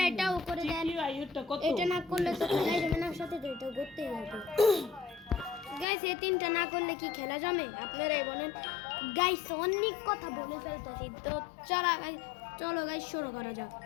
এটাও করে দেন। এটা না করলে তো খেলা যাবে না, সাথে তো এটা করতেই হবে। গাইস, এই তিনটা না করলে কি খেলা জমে? আপনারাই বলেন। গাইস, অনেক কথা বলে ফেলতেছি, তো চলো গাইস শুরু করা যাক।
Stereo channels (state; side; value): drops out; right; at 5.9 s